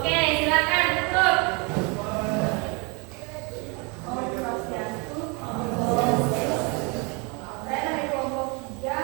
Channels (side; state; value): left; quieter; 30.7 dB